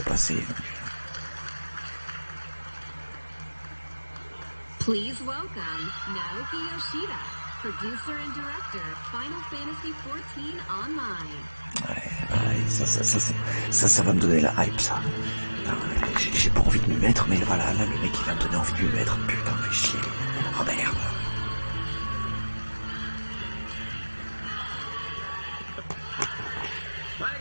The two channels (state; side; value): inverted; both; correlation -1.00